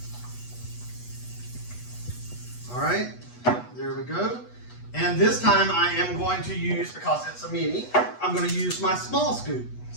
All right, there we go. And this time I am going to use, because it's a mini, I'm going to use my small scoop.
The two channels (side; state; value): right; late; 8.2 ms